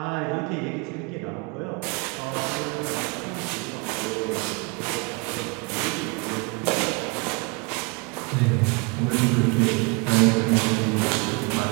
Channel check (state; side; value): quieter; left; 30.4 dB